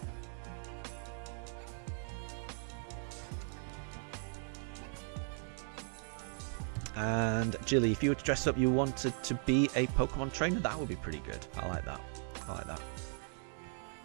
And Jilly, if you were to dress up, you wanted to be a Pokemon trainer, that would be pretty good. I like that. I like that.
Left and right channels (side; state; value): left; silent; 53 dB below the other